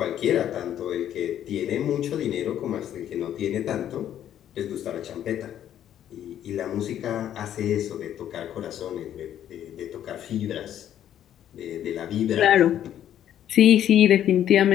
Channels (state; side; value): quieter; right; 10.8 dB